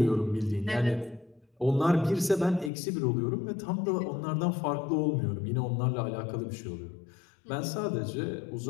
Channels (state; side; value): drops out; right; at 2.7 s